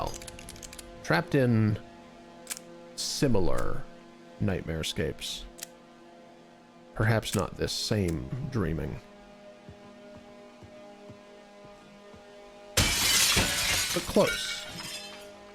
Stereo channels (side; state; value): both; identical; correlation 1.00